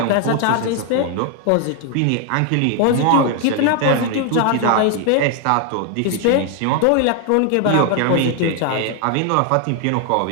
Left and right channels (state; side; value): different; both; correlation 0.00